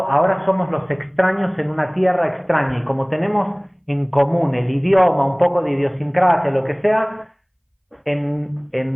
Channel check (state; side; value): identical; both; correlation 1.00